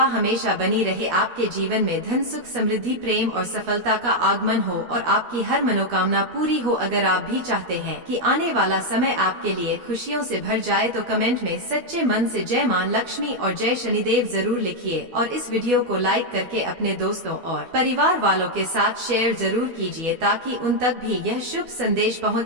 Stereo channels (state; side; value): late; left; 12 ms